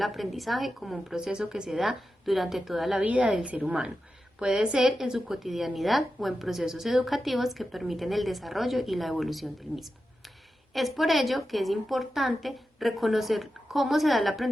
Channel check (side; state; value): both; normal; correlation 0.91